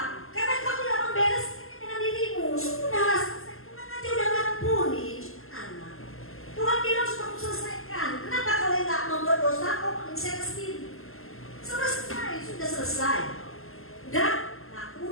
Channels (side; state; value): right; late; 0.62 ms